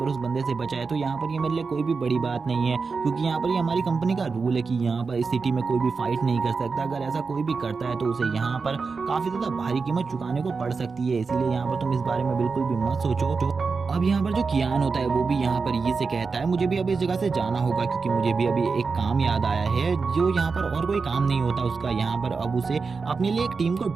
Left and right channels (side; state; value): left; quieter; 4.7 dB